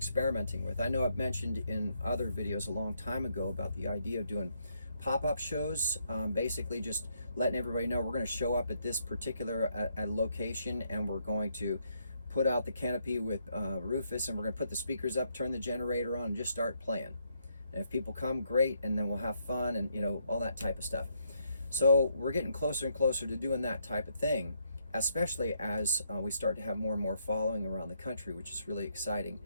with. I know I've mentioned in other videos a long time ago about the idea of doing pop-up shows, basically just letting everybody know we're going to show up at this particular location, and we're going to put out the canopy with Rufus, and we're going to put the speakers up, turn the generator on, and just start playing. And if people come, great, and then we'll have fun and, you know, all that type of stuff. So we're getting closer and closer to doing that type of thing, especially as we start to have more and more following around the country, which is really exciting.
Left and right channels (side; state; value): both; inverted; correlation -0.75